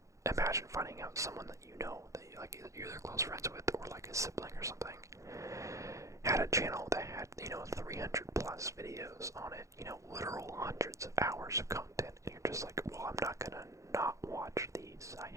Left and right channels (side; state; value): left; late; 0.15 ms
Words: imagine finding out someone that that you're either close friends with, or a sibling or something, had a channel that had 300 plus videos on it, literal hundreds of hours of content, and you're just like, well, I'm not gonna not watch these. I